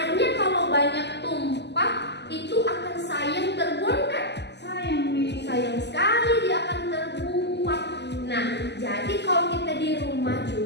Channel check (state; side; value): late; right; 0.50 ms